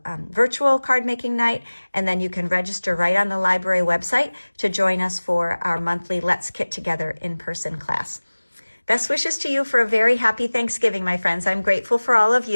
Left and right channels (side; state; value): both; inverted; correlation -1.00